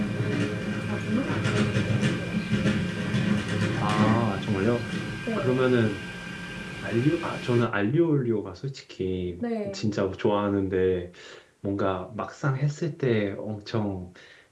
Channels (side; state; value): both; identical; correlation 1.00